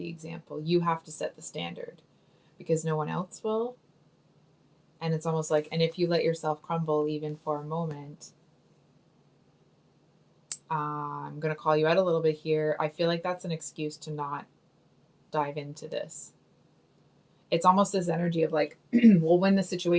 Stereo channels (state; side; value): identical; both; correlation 1.00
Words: example. You have to set the standard because no one else will. And it's almost like, and if you let yourself crumble even for a moment, I'm going to call you out a little bit here. I feel like that's an excuse to not dive into this. It's almost this energy of like, well, when the